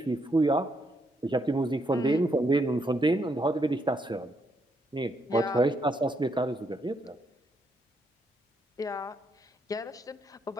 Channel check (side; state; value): both; normal; correlation 0.76